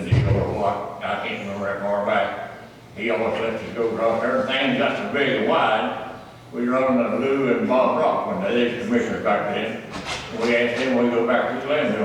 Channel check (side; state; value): both; identical; correlation 1.00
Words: deal or what, I can't remember that far back. He almost let us go across there, things got so big and wide, we run into Lou and Bob Rock when they was commissioners back then. We asked them, we go back to the landfill,